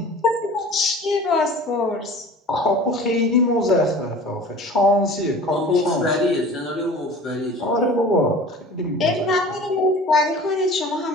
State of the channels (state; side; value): normal; both; correlation 0.41